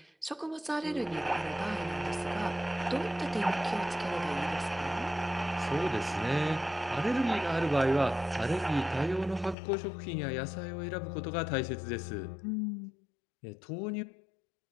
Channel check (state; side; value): drops out; right; at 9.6 s